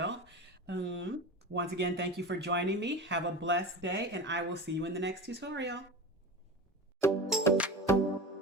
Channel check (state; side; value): normal; both; correlation 0.28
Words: Once again, thank you for joining me. Have a blessed day, and I will see you in the next tutorial.